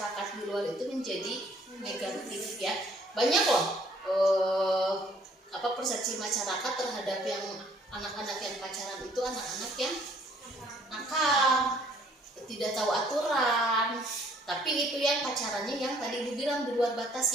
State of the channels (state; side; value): normal; both; correlation 0.61